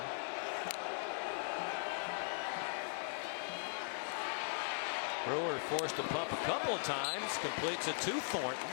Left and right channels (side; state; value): right; silent; 51 dB below the other